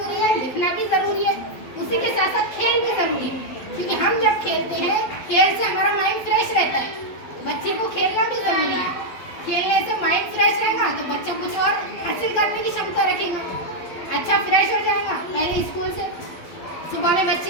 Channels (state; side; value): late; right; 12 ms